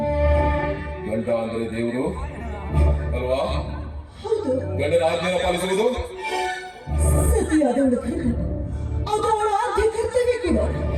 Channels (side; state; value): both; identical; correlation 1.00